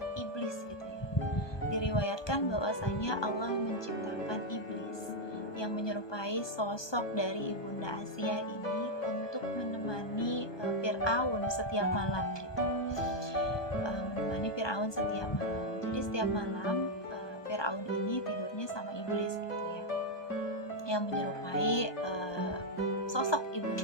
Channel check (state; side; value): late; right; 1.2 ms